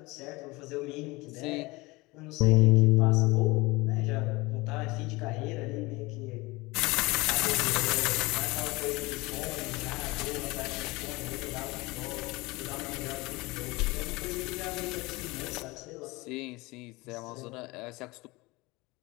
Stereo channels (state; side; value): quieter; right; 22.9 dB